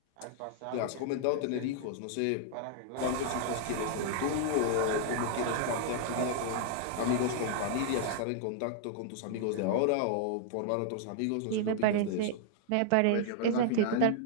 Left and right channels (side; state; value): both; different; correlation -0.01